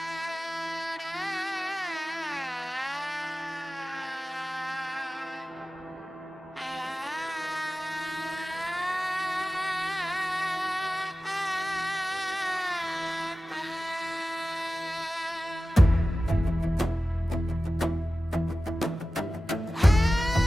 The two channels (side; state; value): both; normal; correlation 0.95